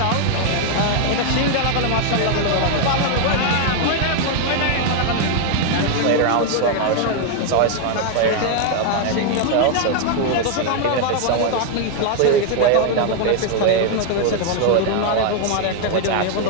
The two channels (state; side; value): different; both; correlation 0.01